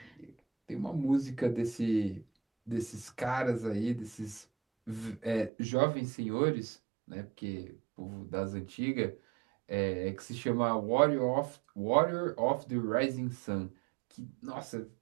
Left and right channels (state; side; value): drops out; left; at 5.5 s